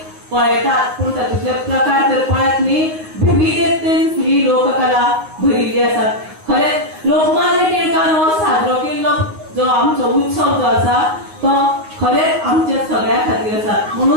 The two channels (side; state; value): left; late; 9.5 ms